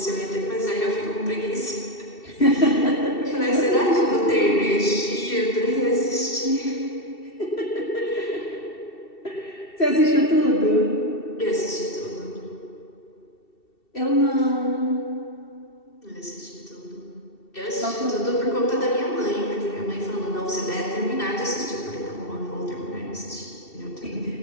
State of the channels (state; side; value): late; right; 2.7 ms